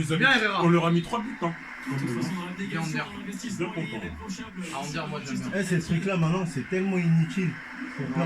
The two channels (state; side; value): identical; both; correlation 1.00